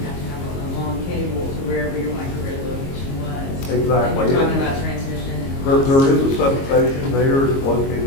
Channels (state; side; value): late; right; 22 ms